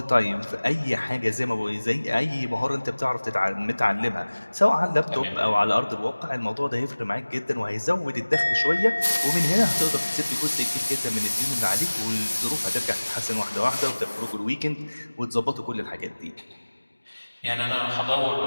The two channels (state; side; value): inverted; both; correlation -1.00